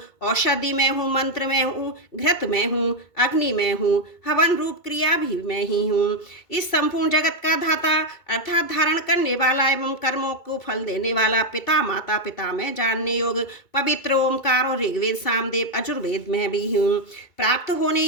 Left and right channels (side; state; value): right; late; 2.2 ms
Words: औषधि में हूँ, मंत्र में हूँ, घृत में हूँ, अग्नि में हूँ, हवन रूप क्रिया भी मैं ही हूँ। इस संपूर्ण जगत का धाता अर्थात धारण करने वाला एवं कर्मों को फल देने वाला पिता, माता, पिता में जानने योग पवित्र ओमकार और ऋग्वेद, सामवेद, अजुर्वेद में भी हूँ। प्राप्त होने